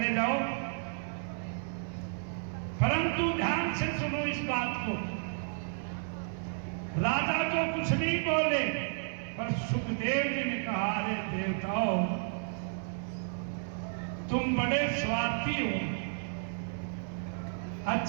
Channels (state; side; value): silent; left; 56 dB below the other